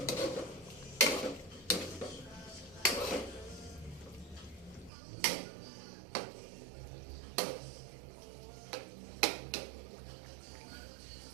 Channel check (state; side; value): drops out; left; at 4.9 s